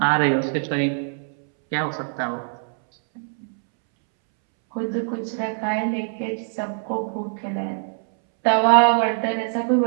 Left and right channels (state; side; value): silent; left; 64 dB below the other